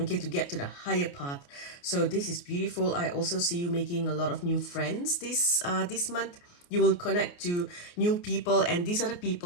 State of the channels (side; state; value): right; late; 28 ms